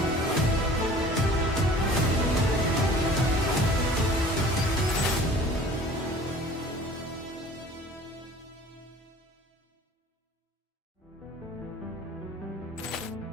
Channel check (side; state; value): both; normal; correlation 0.47